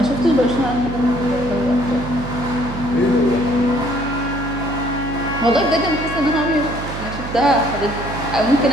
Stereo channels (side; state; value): right; noise; hum, 8 dB below the sound